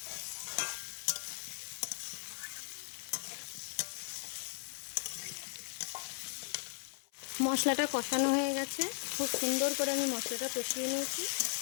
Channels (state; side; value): silent; right; 53 dB below the other